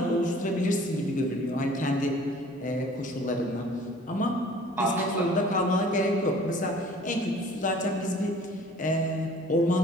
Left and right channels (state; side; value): normal; both; correlation 0.50